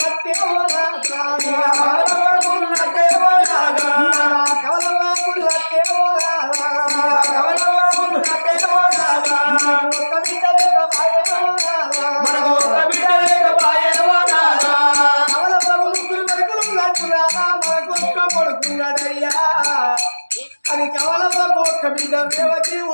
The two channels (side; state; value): both; inverted; correlation -1.00